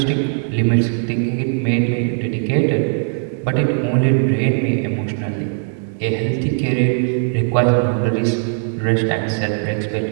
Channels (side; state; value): left; silent; digital silence